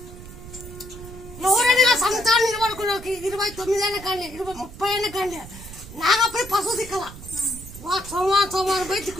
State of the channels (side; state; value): right; noise; rumble, 15 dB below the sound